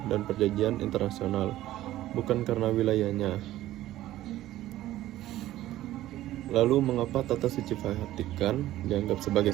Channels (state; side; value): quieter; left; 14.6 dB